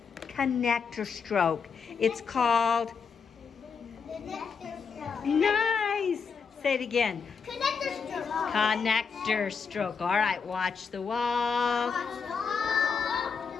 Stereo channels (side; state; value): right; quieter; 5.8 dB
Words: connector stroke. It's called, nice. Say it again. Connector stroke. Connector stroke. All right, watch the wall.